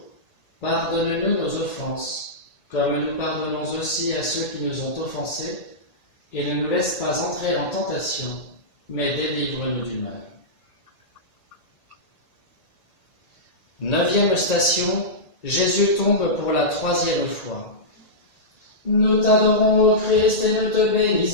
pardonne-nous nos offenses, comme nous pardonnons aussi à ceux qui nous ont offensés, et ne nous laisse pas entrer en tentation, mais délivre-nous du mal. Neuvième station, Jésus tombe pour la troisième fois. Nous t'adorons, ô Christ, et nous te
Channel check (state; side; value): late; right; 1.8 ms